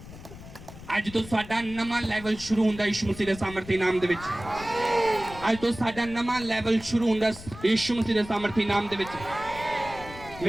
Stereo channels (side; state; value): left; noise; rumble, 15 dB below the sound